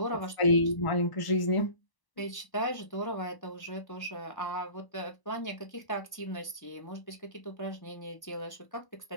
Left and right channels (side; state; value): right; late; 1.0 ms